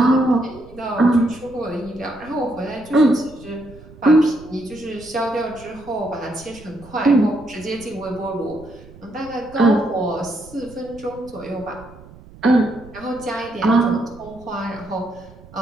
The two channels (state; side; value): noise; right; rumble, 20 dB below the sound